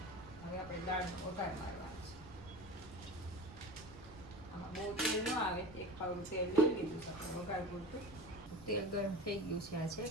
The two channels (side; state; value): right; noise; rumble, 17 dB below the sound